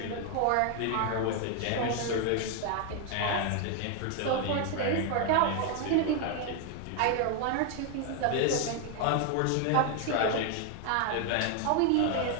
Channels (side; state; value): both; different; correlation 0.00